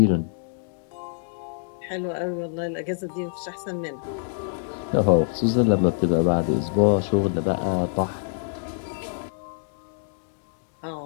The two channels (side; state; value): right; silent; digital silence